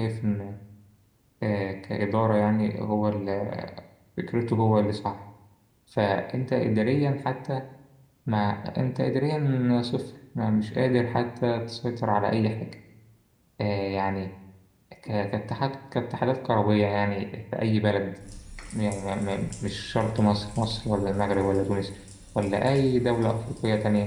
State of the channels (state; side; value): identical; both; correlation 1.00